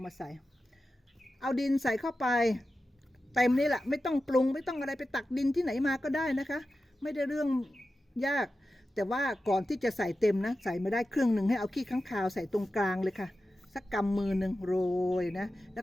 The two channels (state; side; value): normal; both; correlation 0.93